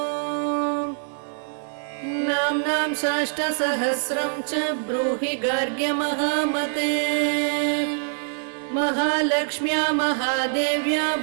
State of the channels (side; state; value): left; silent; 62 dB below the other